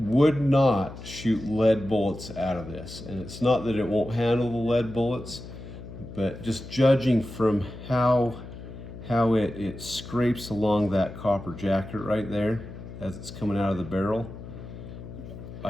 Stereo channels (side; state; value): left; noise; hum, 12 dB below the sound